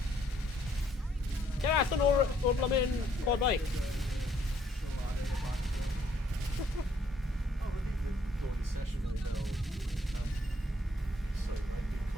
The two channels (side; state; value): both; normal; correlation 0.67